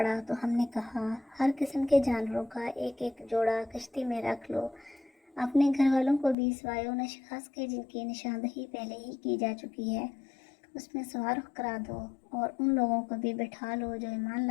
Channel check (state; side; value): drops out; right; at 6.4 s